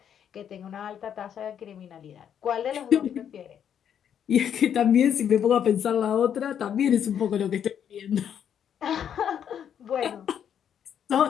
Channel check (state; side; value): quieter; right; 8.8 dB